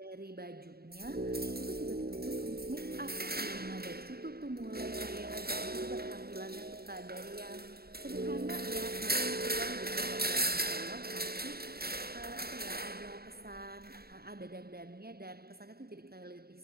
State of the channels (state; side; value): late; left; 0.45 ms